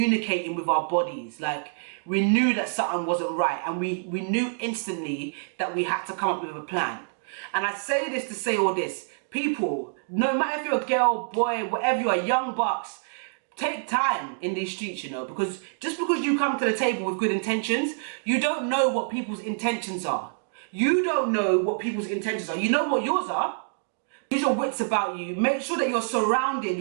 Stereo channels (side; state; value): left; silent; digital silence